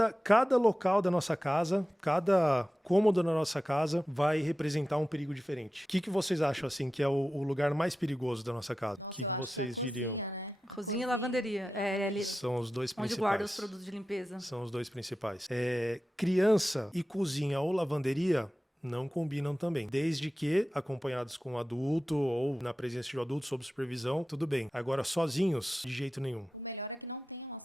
local da nossa casa, cada cômodo da nossa casa vai representar um perigo diferente. O que vocês acham assim que é o lugar mais perigoso da nossa casa? O que vocês diriam? Cozinha e lavanderia. São os dois principais. Onde guarda os produtos de limpeza. São os dois principais. Criança e cozinha ou lavanderia não combinam também. Desde que acompanhados com um adulto ou na presença de um adulto sob supervisão, tudo bem. Agora, sozinhos, de jeito nenhum. O melhor é que não tenham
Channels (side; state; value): both; normal; correlation 0.93